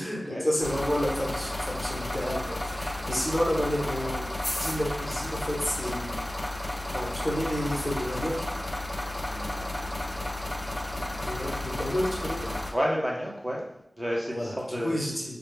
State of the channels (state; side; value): normal; both; correlation 0.96